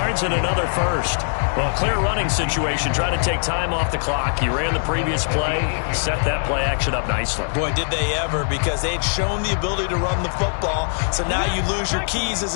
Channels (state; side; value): silent; right; 65 dB below the other